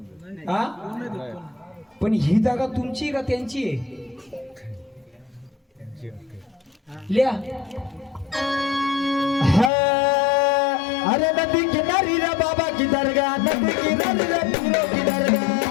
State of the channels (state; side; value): drops out; right; at 9.7 s